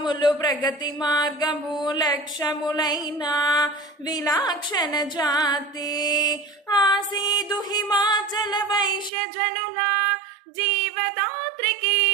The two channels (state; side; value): drops out; left; at 9.1 s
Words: ప్రగతి మార్గము లక్ష్యములైన విలాక్షణ జాతి ఆసీదు హిమాచల వైశ్యజనుల జీవదాత్రికి